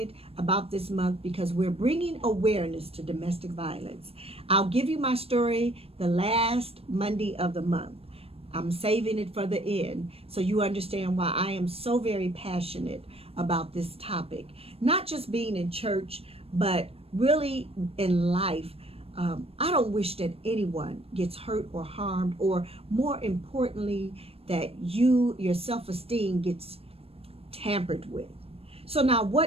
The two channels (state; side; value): late; left; 0.28 ms